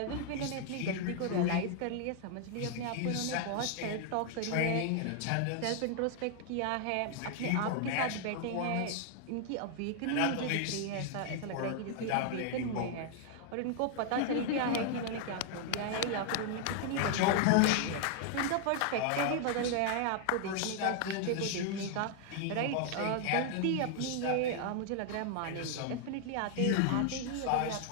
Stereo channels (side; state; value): both; different; correlation 0.00